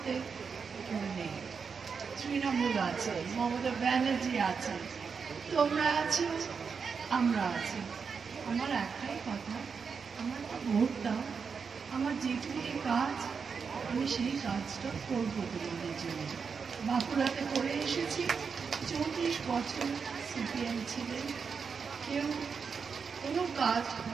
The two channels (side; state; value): left; quieter; 5.7 dB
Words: কেউ নেই। তৃণমূল আছে, মমতা ব্যানার্জি আছে, তোমরা আছো, আমরা আছি। আমার একটাই কথা, আমার তো ভোট দাও। আমার যেটুকু কাজ আমি সেই কাজটা করবো তোমাদের জন্য। বাঁকুড়াতে করে এসেছি, 34 বছর সিপিএম ছিলেন, কেউ কোনো কাজ